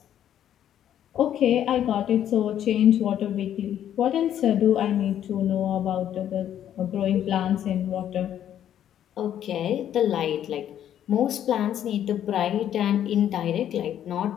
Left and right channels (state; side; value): quieter; right; 10.5 dB